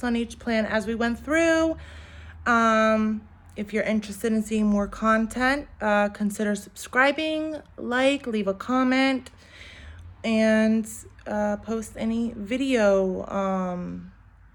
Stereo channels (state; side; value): identical; both; correlation 1.00